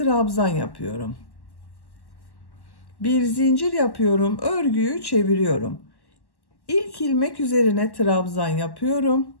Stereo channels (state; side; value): late; right; 1.1 ms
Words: yapıyorum. Bir zincir yapıyorum. Örgüyü çeviriyorum. İlk ilmek üzerine trabzan yapıyorum.